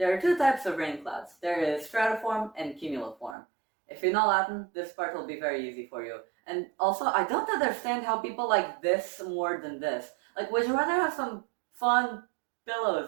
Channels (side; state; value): left; drops out; at 3.4 s